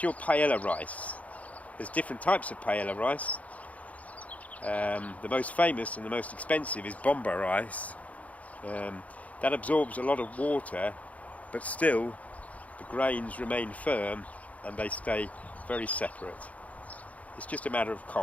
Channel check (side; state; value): right; late; 0.069 ms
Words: your paella rice. There's different types of paella rice. The most famous and the most expensive is bomba rice. That absorbs a lot of water, but still the grains remain firm and they stay very separate. It's just a matter of